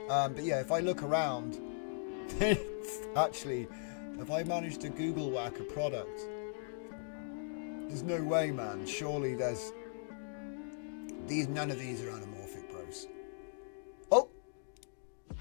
But yeah, if I look around, actually, if I manage to Google whack a product, there's no way, man. Surely there's none of these are anamorphic, bros.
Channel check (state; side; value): silent; right; digital silence